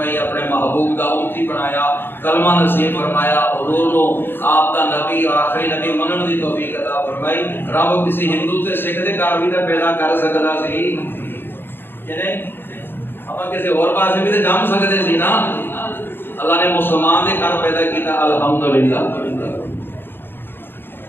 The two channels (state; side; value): late; right; 0.10 ms